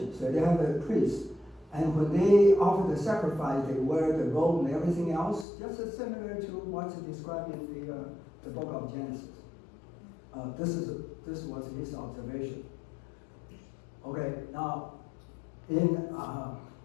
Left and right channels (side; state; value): right; drops out; at 5.5 s